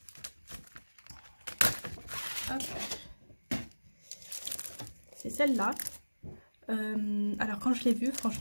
Hop. C'est celle-là. Alors quand je l'ai vue,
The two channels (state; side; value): inverted; both; correlation -1.00